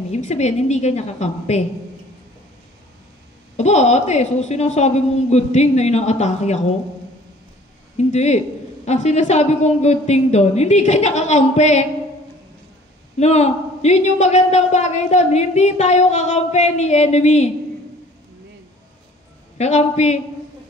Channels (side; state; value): both; normal; correlation 0.52